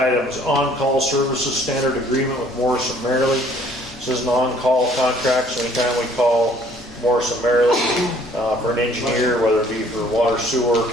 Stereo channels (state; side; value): normal; both; correlation 0.58